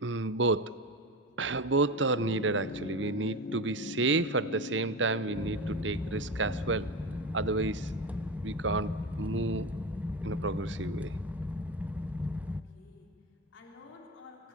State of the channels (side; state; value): both; normal; correlation 0.23